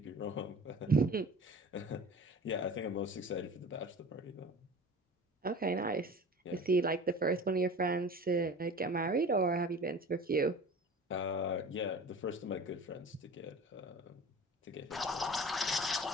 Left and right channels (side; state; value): both; normal; correlation 0.40